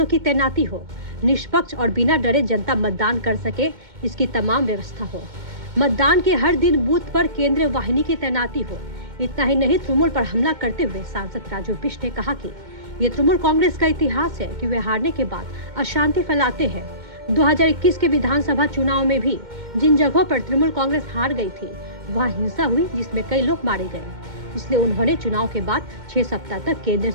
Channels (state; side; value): late; left; 2.1 ms